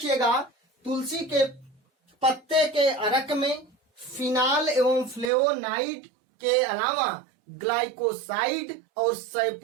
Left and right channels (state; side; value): drops out; left; at 5.3 s